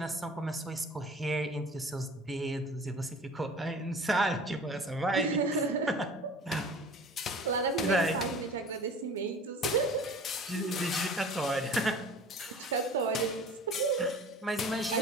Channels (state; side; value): normal; both; correlation 0.42